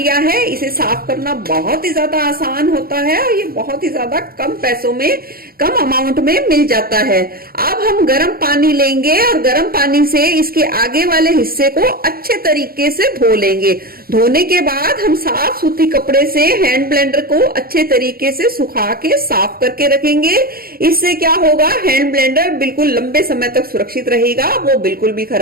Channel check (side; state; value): left; late; 0.43 ms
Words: है। इसे साफ करना बहुत ही ज्यादा आसान होता है और ये बहुत ही ज्यादा कम पैसों में, कम अमाउंट में मिल जाता है। अब हम गर्म पानी लेंगे और गर्म पानी से इसके आगे वाले हिस्से को अच्छे तरीके से धो लेंगे। धोने के बाद हम साफ सूती कपड़े से हैंड ब्लेंडर को अच्छे तरीके से सुखा के साफ करके रखेंगे। इससे क्या होगा, हैंड ब्लेंडर बिल्कुल लंबे समय तक सुरक्षित रहेगा, वो बिल्कुल भी